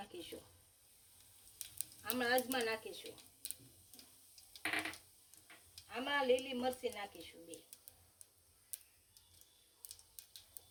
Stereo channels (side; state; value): both; identical; correlation 1.00